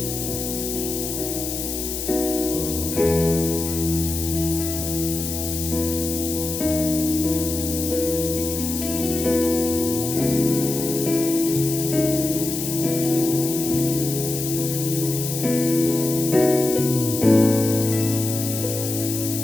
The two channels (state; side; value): noise; left; hiss, 5 dB below the sound